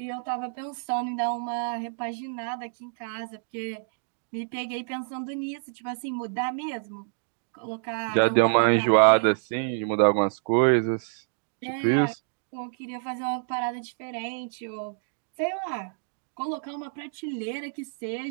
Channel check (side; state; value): left; silent; digital silence